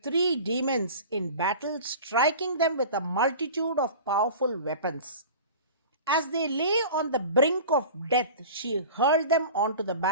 demons in battle, striking them with a multitude of powerful weapons. As they lay on the brink of death, she hurled them onto the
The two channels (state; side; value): inverted; both; correlation -0.37